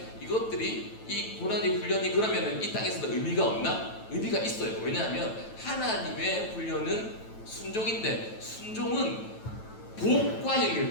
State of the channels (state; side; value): late; right; 9.1 ms